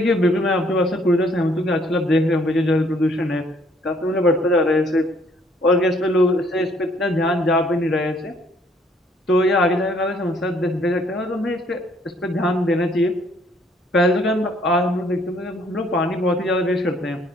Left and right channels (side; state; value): both; normal; correlation 0.64